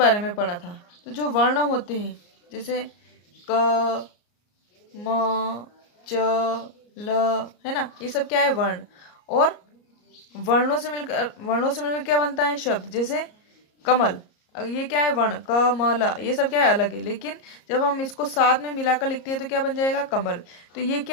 में पढ़ा था। तो जो वर्ण होते हैं जैसे क म च ल, है ना, ये सब क्या है, वर्ण। और वर्णों से मिलकर क्या बनता है, शब्द। जैसे कमल, ये क्या है, वर्ण क म ल, ये सब क्या है, अलग है, लेकिन जब हम इसको साथ में मिलाकर लिखते हैं तो क्या बन जाएगा, कमल। तो ये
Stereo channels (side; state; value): right; late; 34 ms